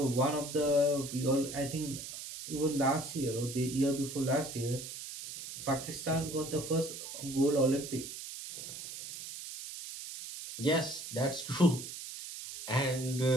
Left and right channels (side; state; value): right; noise; hiss, 9 dB below the sound